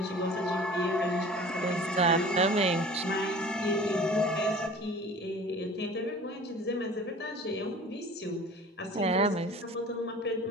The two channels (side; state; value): both; normal; correlation 0.44